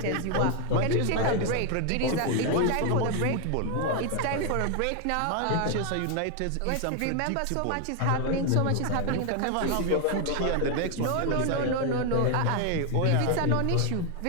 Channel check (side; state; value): both; different; correlation 0.01